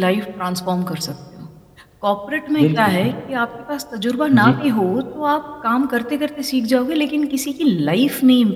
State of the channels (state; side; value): identical; both; correlation 1.00